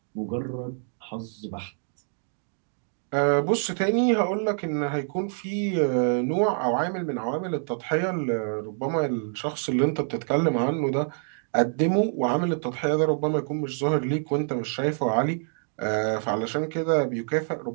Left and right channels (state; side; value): silent; left; digital silence